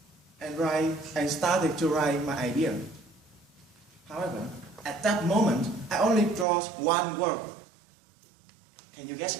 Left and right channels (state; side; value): drops out; left; at 6.5 s